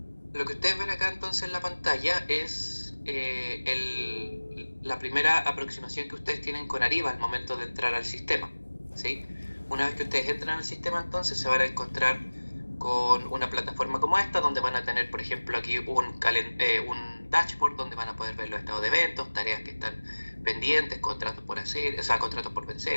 Lo que ustedes ven acá entonces en la pantalla es la primera aproximación que ustedes tienen con Ariba al momento de entrar al sistema, ¿sí? Una vez que ustedes entran al sistema, entonces se van a encontrar con una plataforma como esta, donde van a tener, por ejemplo, aquí un dashboard donde van a poder ver los estados de eventos, tareas que están pendientes, contratos por hacer, o sea, contratos por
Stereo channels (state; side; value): inverted; both; correlation -1.00